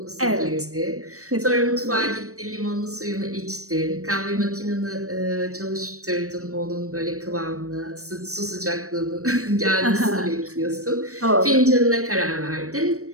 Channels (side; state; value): left; late; 0.65 ms